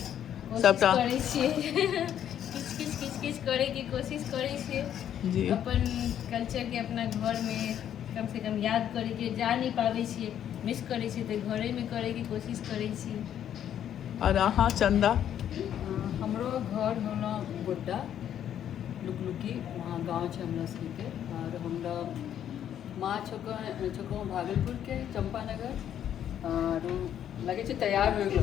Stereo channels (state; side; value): quieter; right; 10.1 dB